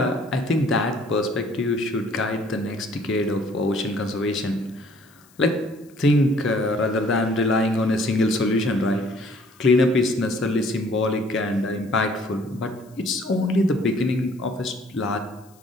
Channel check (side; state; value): left; noise; hiss, 29 dB below the sound